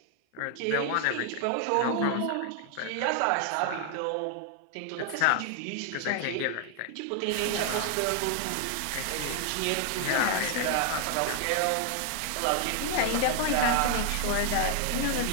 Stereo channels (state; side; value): different; both; correlation 0.00